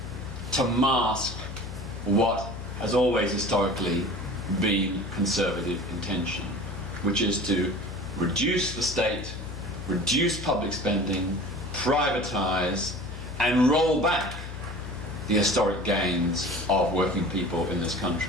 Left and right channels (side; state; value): left; noise; hum, 10 dB below the sound